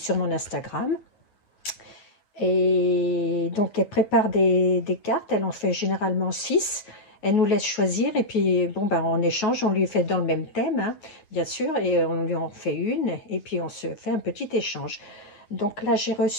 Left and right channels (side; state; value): right; late; 9.5 ms